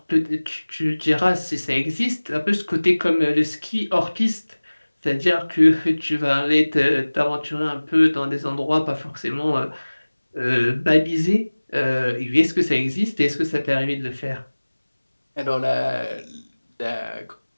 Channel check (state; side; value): inverted; both; correlation -1.00